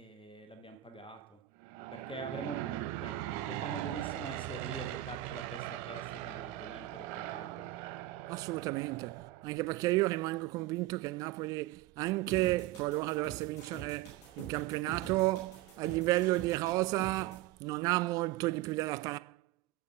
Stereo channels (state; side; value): quieter; left; 15.9 dB